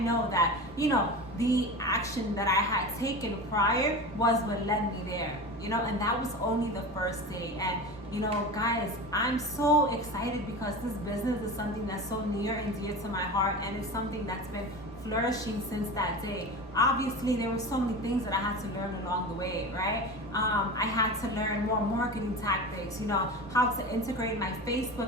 that, the action that I had taken prior was what led me there, and that was only the first day. And guys, I'm so excited because this business is something that's so near and dear to my heart, and it's something that's been flourishing since that day. Obviously, there were so many things that I had to learn along the way, right? I had to learn more marketing tactics, how to integrate my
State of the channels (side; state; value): both; normal; correlation 0.29